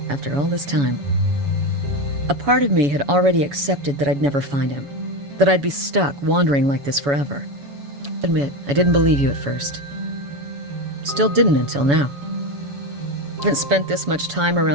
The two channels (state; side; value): late; left; 7.1 ms